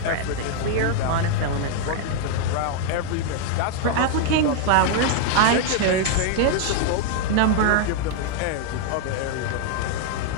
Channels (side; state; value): both; different; correlation 0.00